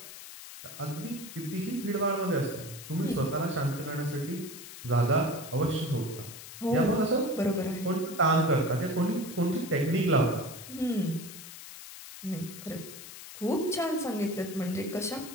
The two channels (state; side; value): noise; left; hiss, 13 dB below the sound